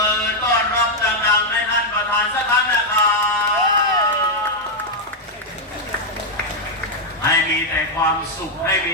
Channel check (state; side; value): normal; both; correlation 0.00